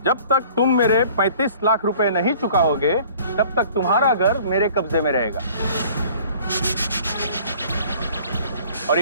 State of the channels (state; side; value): inverted; both; correlation -0.51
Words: जब तक तुम मेरे 35 लाख रुपए नहीं चुकाओगे, तब तक तुम्हारा घर मेरे कब्जे में रहेगा। और